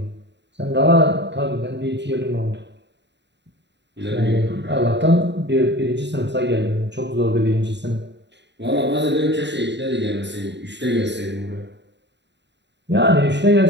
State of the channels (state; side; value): late; left; 0.51 ms